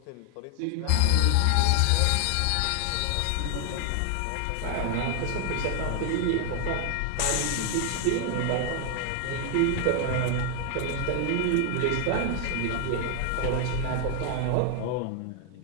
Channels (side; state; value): both; different; correlation 0.00